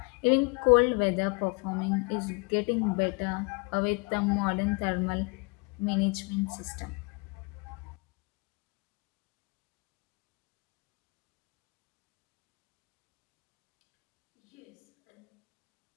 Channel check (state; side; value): quieter; right; 30.1 dB